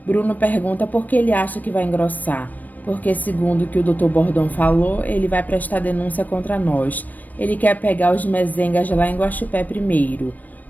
Bruno pergunta por que ele acha que vai engrossar. Porque, segundo o que o Dr. Bordon falou, ele vai prestar denúncia contra nós. Ele quer pegar os mezengas lá em Guaxupé primeiro.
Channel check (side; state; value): right; late; 0.082 ms